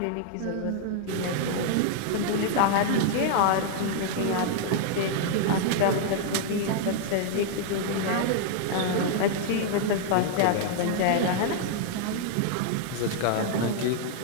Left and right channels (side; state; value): both; different; correlation -0.01